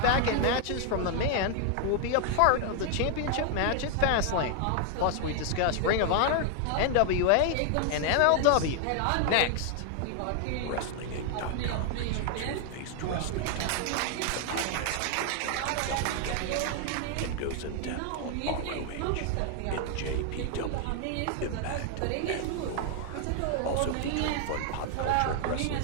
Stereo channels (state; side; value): different; both; correlation 0.00